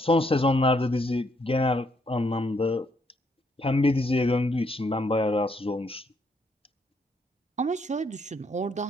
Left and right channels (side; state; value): both; normal; correlation 0.72